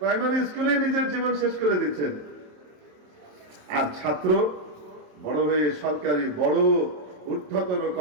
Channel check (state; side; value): late; left; 27 ms